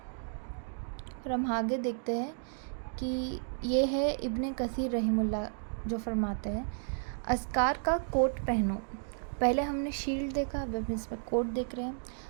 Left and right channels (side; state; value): left; silent; digital silence